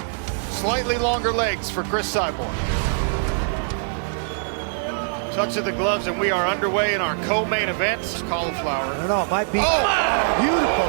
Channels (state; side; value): silent; left; digital silence